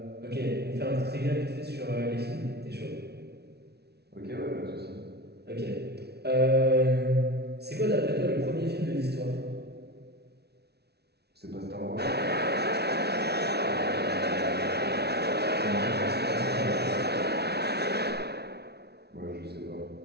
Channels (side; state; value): left; late; 0.48 ms